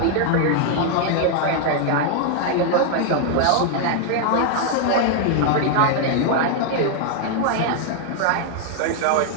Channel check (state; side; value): different; both; correlation 0.00